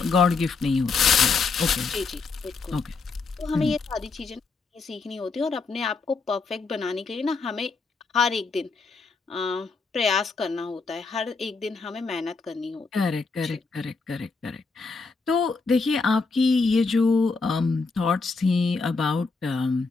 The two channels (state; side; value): quieter; right; 4.4 dB